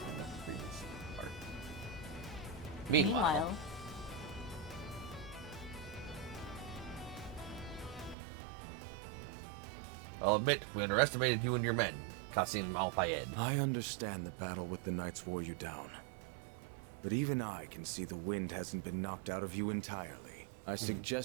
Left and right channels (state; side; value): drops out; left; at 8.2 s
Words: And then freeze part. Meanwhile, I'll admit, we underestimated you and your men, Qasim Al-Fayed. I understand the battle with the Knights wore you down. But even I can see the wind hasn't been knocked out of you entirely. I